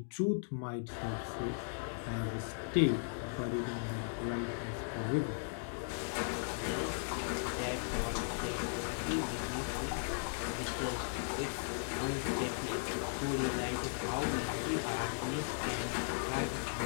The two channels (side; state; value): right; silent; digital silence